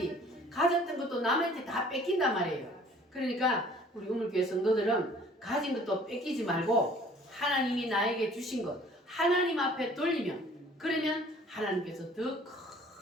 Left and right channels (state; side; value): normal; both; correlation 0.53